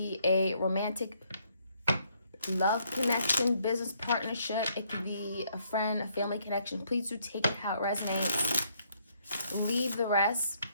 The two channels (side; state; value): both; inverted; correlation -0.70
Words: a romantic love connection, business partnership. It could be a friend, a family connection. Please do take it how it resonates. Leave the rest.